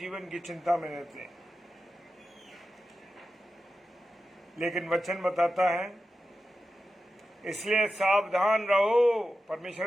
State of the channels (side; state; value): both; normal; correlation 0.91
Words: की चिंता में रहते हैं। लेकिन वचन बताता है, इसलिए सावधान रहो।